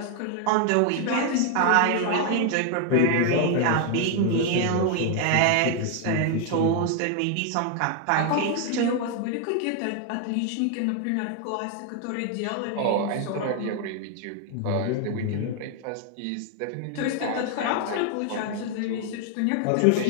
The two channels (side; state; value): both; different; correlation 0.00